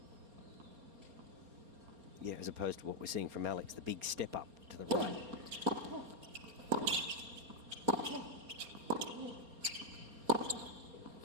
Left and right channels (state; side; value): late; left; 4.3 ms